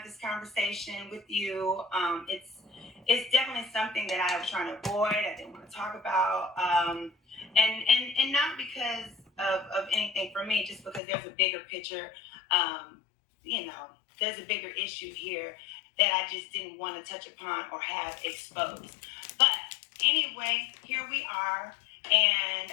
this conversation with you. It's definitely something that I was trying to avoid. I didn't want to talk about, and not because of anything for me, just because there's a bigger picture. Um, you know, there's a bigger issue here that I just didn't want to touch upon or have exposed. But anyway, here we are. And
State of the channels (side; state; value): right; drops out; at 11.0 s